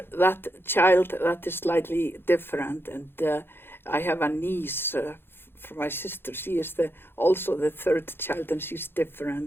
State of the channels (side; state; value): right; late; 0.11 ms